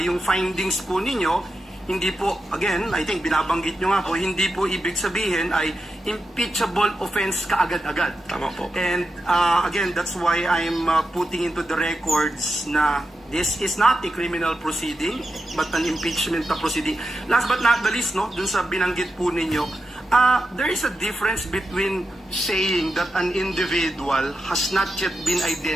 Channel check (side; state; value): both; normal; correlation 0.89